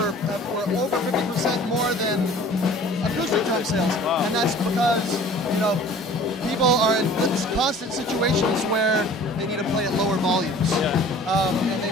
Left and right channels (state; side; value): normal; both; correlation 0.47